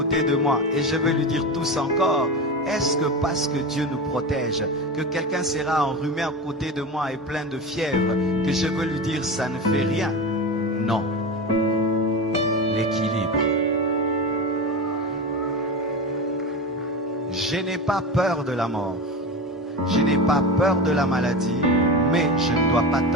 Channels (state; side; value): normal; both; correlation 0.24